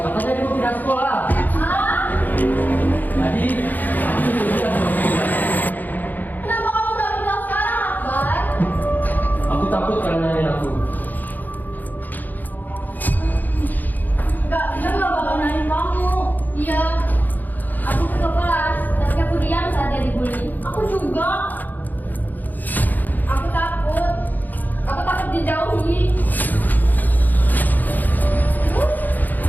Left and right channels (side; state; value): right; late; 0.085 ms